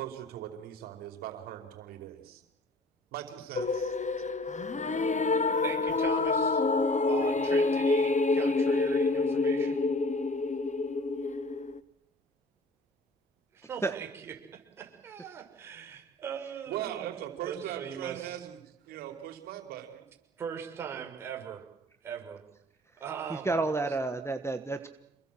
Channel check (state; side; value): normal; both; correlation 0.47